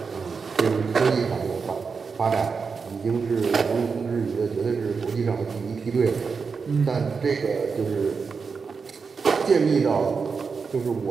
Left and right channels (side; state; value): left; quieter; 5.3 dB